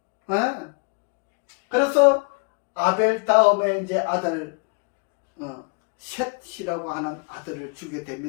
그래서 아벨 다음에 이제 아들 셋이라고 하는 아들을 주게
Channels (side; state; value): right; quieter; 34.0 dB